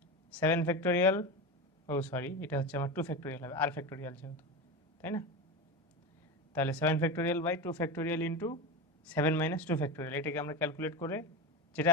7 ফ্যাক্টোরিয়াল, ও সরি এটা হচ্ছে আমার 2 ফ্যাক্টোরিয়াল হবে, আর ফ্যাক্টোরিয়াল যেহেতু, তাই না? তাহলে 7 factorial by 2 factorial into 7 minus 2 factorial, এটাকে আমরা ক্যালকুলেট করে যেটা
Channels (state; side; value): normal; both; correlation 0.22